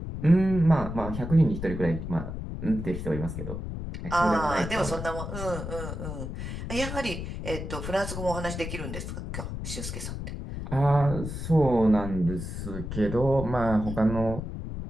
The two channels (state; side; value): noise; left; rumble, 6 dB below the sound